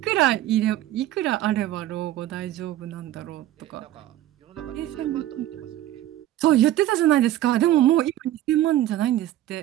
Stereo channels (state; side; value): quieter; left; 13.6 dB